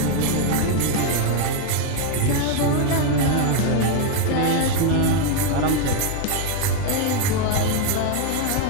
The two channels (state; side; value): different; both; correlation 0.01